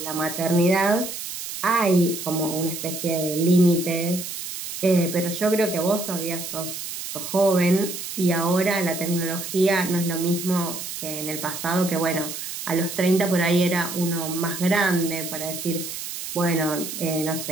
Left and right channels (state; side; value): noise; right; hiss, 7 dB below the sound